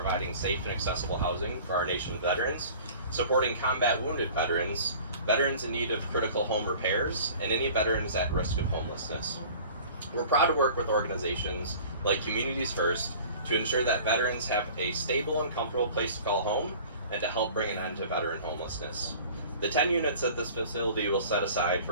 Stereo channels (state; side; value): inverted; both; correlation -0.45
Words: safe and accessible housing for our nation's veterans, supporting combat wounded veterans, veterans in need of critical home repairs, and any veterans at risk of homelessness. We're proud to work with organizations like Communities First to ensure that veterans have a stable and comfortable place to call home and to help bring an end to veteran homelessness. The 10 units that this facility will set aside